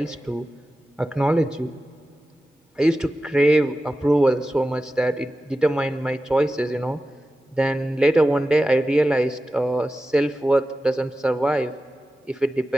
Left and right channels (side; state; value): both; normal; correlation 0.93